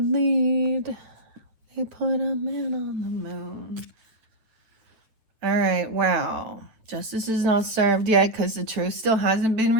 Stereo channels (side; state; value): left; late; 8.7 ms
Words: They put a man on the moon. All right, wow. Justice is not served yet because the truth still hasn't been